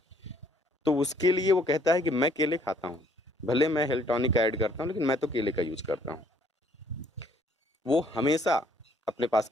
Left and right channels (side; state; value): both; normal; correlation 0.63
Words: तो उसके लिए वो कहता है कि मैं केले खाता हूँ, भले मैं हेल्थ टॉनिक ऐड करता हूँ, लेकिन मैं तो केले का यूज करता हूँ। वो हमेशा अपने पास